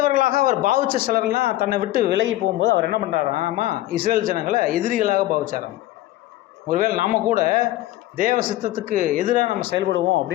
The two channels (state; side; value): quieter; right; 15.7 dB